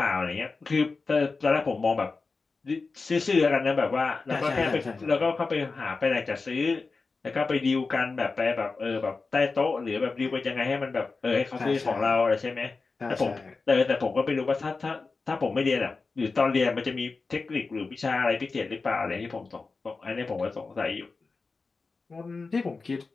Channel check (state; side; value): quieter; right; 4.1 dB